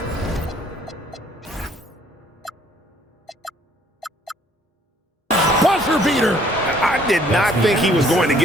Buzzer beater. I did not think he was going to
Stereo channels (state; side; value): normal; both; correlation 0.61